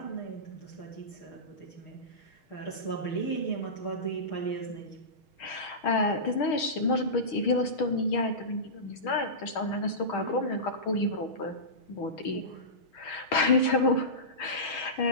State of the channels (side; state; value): right; late; 6.3 ms